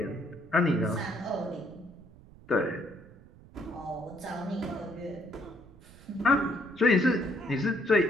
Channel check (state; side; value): noise; right; rumble, 22 dB below the sound